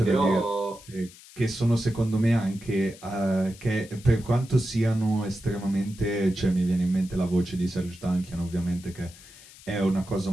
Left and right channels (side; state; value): left; noise; hiss, 21 dB below the sound